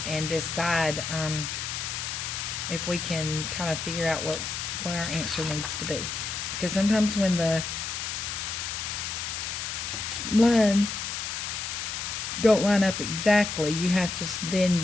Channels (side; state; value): left; noise; hiss, 4 dB below the sound